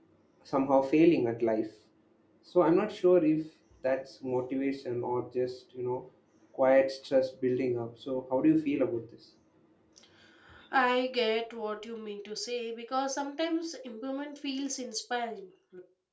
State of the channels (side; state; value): both; identical; correlation 1.00